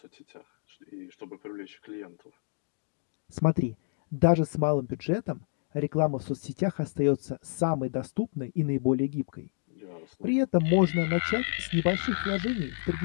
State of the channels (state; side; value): silent; right; digital silence